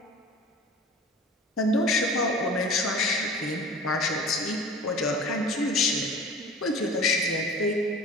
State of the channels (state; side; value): normal; both; correlation 0.39